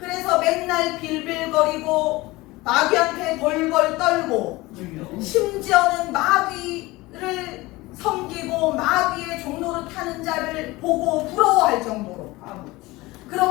맨날 빌빌거리고 마귀한테 벌벌 떨고 주여. 심지어는 마귀를 섬기고 마귀의 종로를 타는 자를 보고 부러워할 정도로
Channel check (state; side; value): quieter; right; 20.7 dB